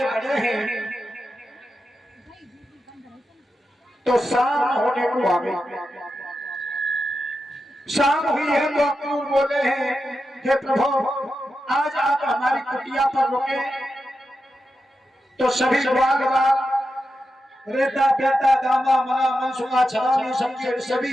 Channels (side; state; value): both; normal; correlation 0.89